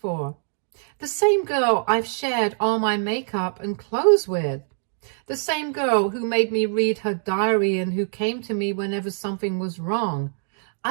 The same girl I've shared all my makeup and clothes with. The same girl who made me read her diary and who came to me whenever something was wrong.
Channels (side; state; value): left; silent; digital silence